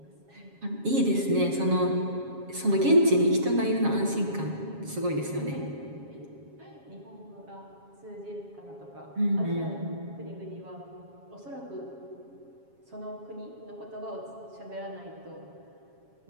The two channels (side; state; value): left; late; 7.3 ms